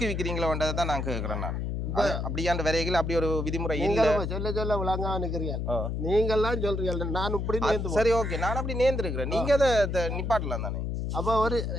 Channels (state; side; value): noise; left; hum, 2 dB below the sound